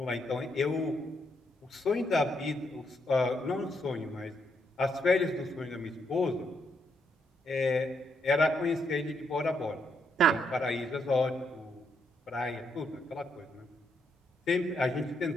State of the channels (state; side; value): normal; both; correlation 0.77